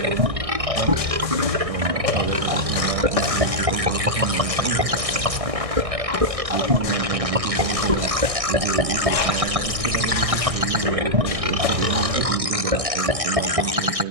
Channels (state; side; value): late; left; 1.6 ms